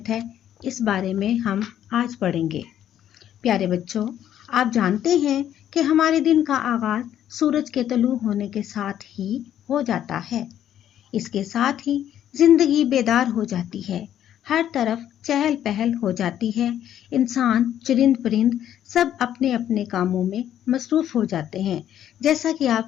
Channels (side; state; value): right; quieter; 10.8 dB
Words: ہے، اس بارے میں ہم آج پڑھیں گے۔ پیارے بچوں، آپ جانتے ہیں کہ ہمارے دن کا آغاز سورج کے طلوع ہونے کے ساتھ ہی ہو جاتا ہے۔ اس کے ساتھ ہی زندگی بیدار ہو جاتی ہے، ہر طرف چہل پہل ہو جاتی ہے، انسان، چرند پرند سب اپنے اپنے کاموں میں مصروف ہو جاتے ہیں، جیسا کہ